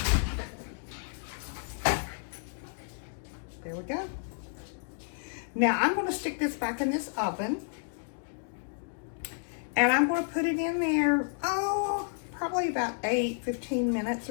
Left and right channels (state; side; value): silent; right; digital silence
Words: There we go. Now I'm going to stick this back in this oven. And I'm going to put it in there, probably about 15 minutes